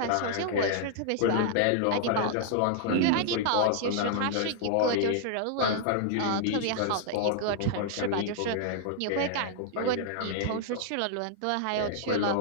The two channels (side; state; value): both; different; correlation -0.01